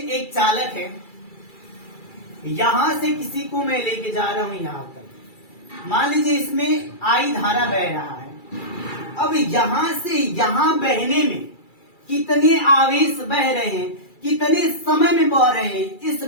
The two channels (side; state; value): right; late; 2.3 ms